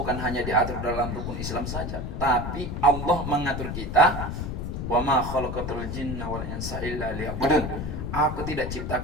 hanya diatur dalam rukun Islam saja, tapi Allah mengatur kita. Wa ma khalaqatul jinna wal insa illa liya'budun. Aku tidak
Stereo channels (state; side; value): noise; left; rumble, 4 dB below the sound